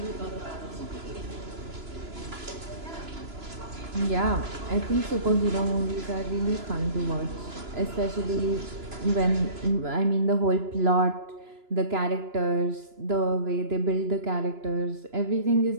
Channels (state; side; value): late; left; 2.9 ms